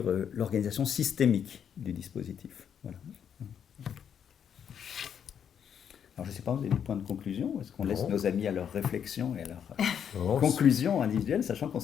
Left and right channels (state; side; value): quieter; right; 8.2 dB